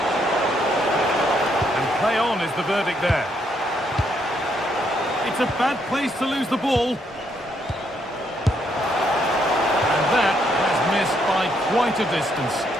Play on is the verdict there. It's a bad place to lose the ball. And that has missed by quite a distance.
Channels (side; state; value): both; normal; correlation 0.74